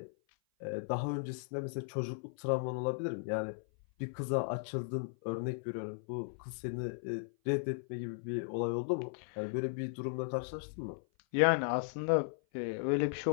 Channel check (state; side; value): silent; right; 54 dB below the other